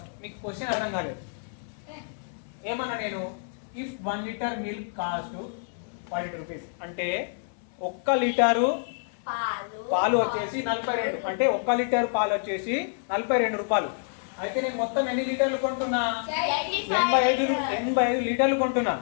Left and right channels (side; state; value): right; silent; 58 dB below the other